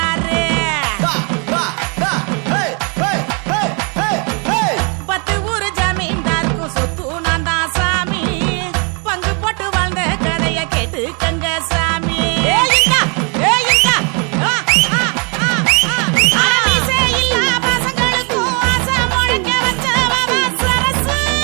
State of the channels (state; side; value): quieter; left; 34.5 dB